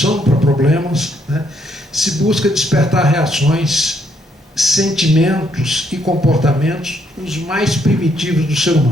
para problemas, né, se busca despertar reações, sentimentos e comportamentos os mais primitivos do ser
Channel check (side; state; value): both; normal; correlation 0.72